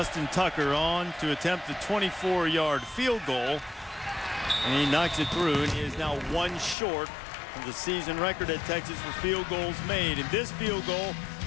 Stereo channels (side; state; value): right; drops out; at 6.8 s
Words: Tucker on to attempt the 24-yard field goal, and he knocks it through, and he is now one short of the season record at Texas for field goals made. And this field goal